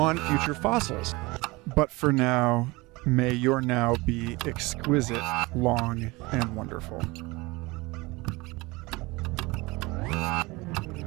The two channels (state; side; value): quieter; left; 23.3 dB